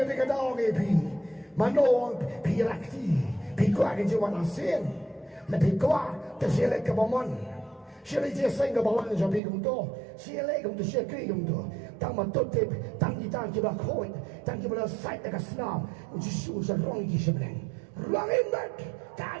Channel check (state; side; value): drops out; left; at 9.4 s